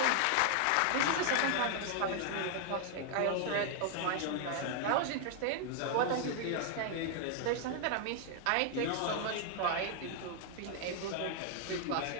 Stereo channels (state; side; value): different; both; correlation 0.00